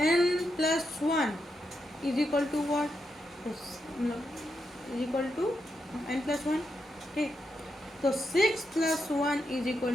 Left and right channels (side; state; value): both; normal; correlation 0.84